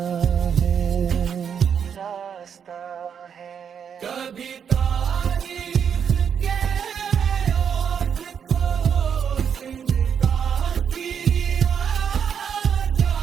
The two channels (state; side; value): quieter; left; 7.6 dB